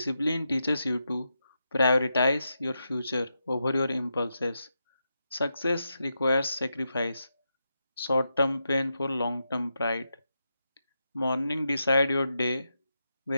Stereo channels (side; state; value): both; inverted; correlation -0.86